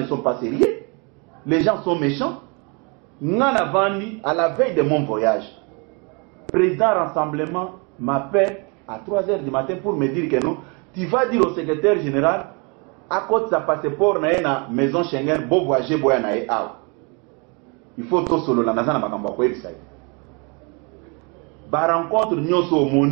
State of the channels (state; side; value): quieter; left; 32.5 dB